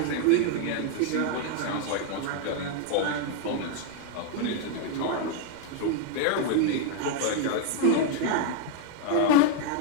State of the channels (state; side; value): different; both; correlation 0.00